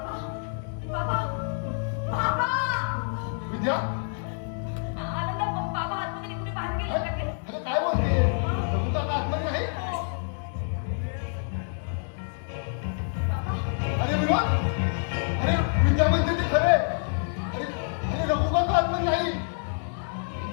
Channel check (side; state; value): right; silent; digital silence